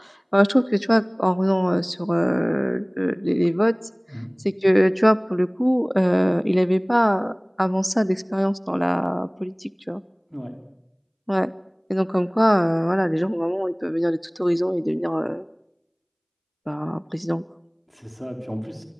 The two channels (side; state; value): both; identical; correlation 1.00